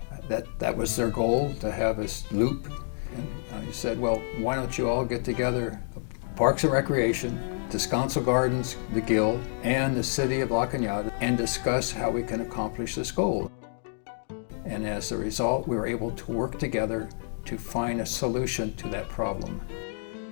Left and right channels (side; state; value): right; silent; digital silence